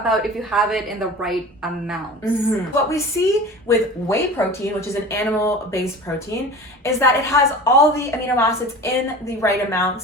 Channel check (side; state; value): both; normal; correlation 0.36